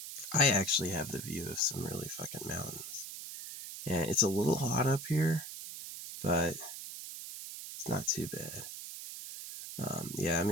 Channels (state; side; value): noise; right; hiss, 9 dB below the sound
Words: I actually have the view of some really fucking mountains. And it's a little hot up here, but it's not too bad. Yeah, I'm